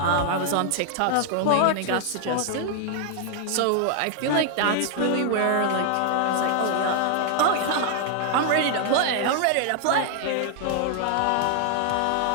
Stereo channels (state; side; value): different; both; correlation 0.00